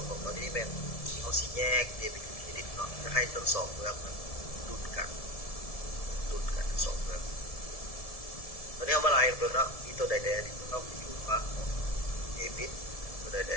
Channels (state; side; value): late; right; 1.7 ms